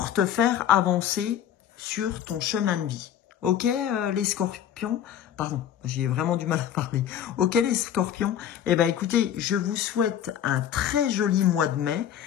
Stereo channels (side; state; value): right; quieter; 10.0 dB